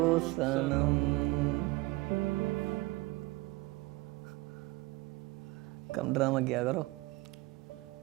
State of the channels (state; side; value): quieter; left; 21.9 dB